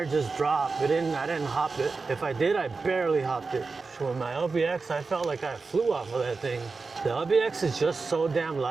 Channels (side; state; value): left; quieter; 4.2 dB